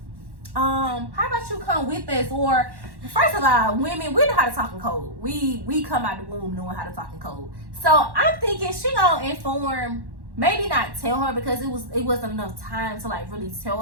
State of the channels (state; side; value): late; left; 1.1 ms